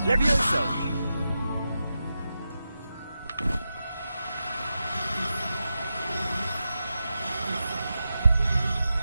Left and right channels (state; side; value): inverted; both; correlation -0.90